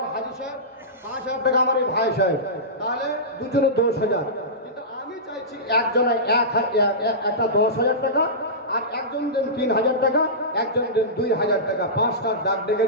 হাজি সাহেব, 5,000 টাকা আমার এই ভাই সাহেব, তাহলে দুজনে 10,000। কিন্তু আমি চাইছি একজনে একটা 10,000 টাকা, আর একজন দেন 3,000 টাকা, একজন দেন 2,000 টাকা। 5টার ডাক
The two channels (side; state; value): both; normal; correlation -0.18